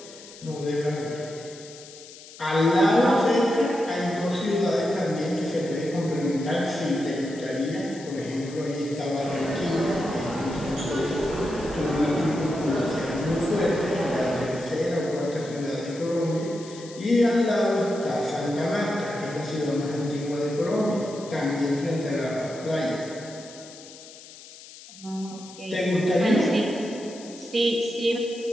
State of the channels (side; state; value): left; noise; hiss, 18 dB below the sound